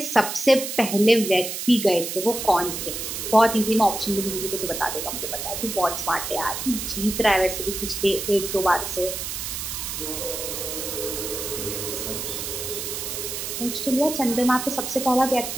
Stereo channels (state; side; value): noise; right; hiss, 5 dB below the sound